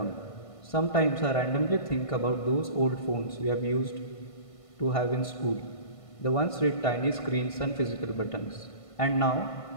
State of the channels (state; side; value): late; right; 1.5 ms